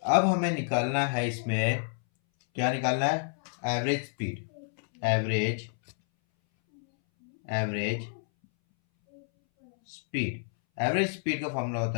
अब हमें निकालना है इसमें, क्या निकालना है, average speed. Average speed, average speed का फॉर्मूला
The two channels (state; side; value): silent; right; 59 dB below the other